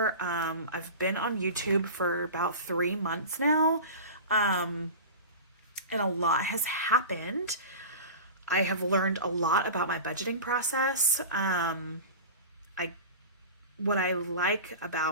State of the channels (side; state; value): both; inverted; correlation -0.32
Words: I've been on YouTube for about 3 months now, and a lot has happened. I have learned a lot about my budgeting process. What I like